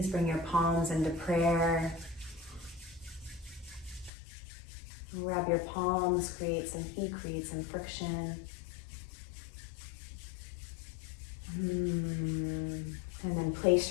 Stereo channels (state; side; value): drops out; right; at 4.1 s